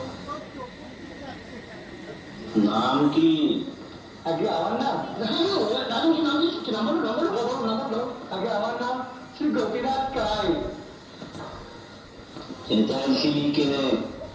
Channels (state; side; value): identical; both; correlation 1.00